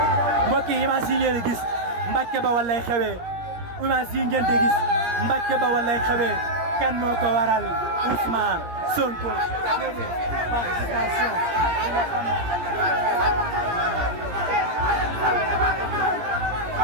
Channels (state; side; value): late; left; 17 ms